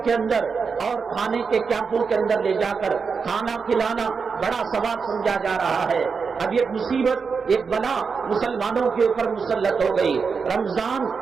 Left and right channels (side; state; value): left; quieter; 5.4 dB